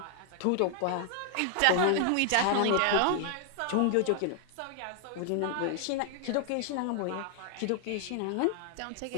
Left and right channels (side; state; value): both; different; correlation 0.00